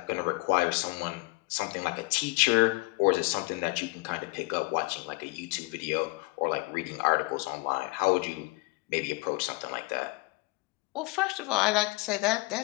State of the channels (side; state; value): right; quieter; 24.7 dB